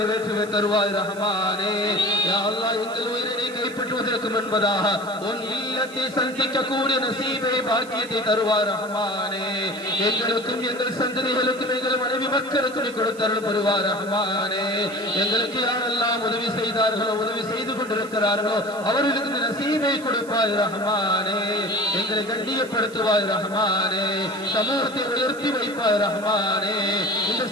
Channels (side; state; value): right; noise; hiss, 21 dB below the sound